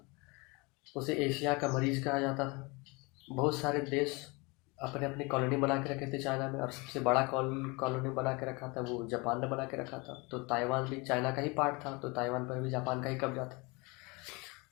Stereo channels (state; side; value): quieter; right; 27.2 dB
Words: उसे एशिया का मरीज कहा जाता था। बहुत सारे देश अपने अपनी कॉलोनी बना के रखे थे चाइना में, और सबसे बड़ा कॉलोनी बना के रखा था वो जापान ने बना के रखा था। तो ताइवान भी चाइना का ही पार्ट था, तो ताइवान पर भी जापान का ही कब्जा था।